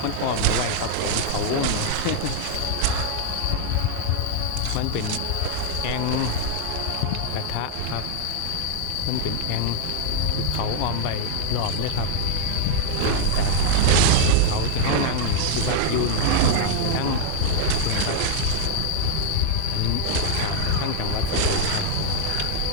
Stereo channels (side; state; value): both; different; correlation 0.00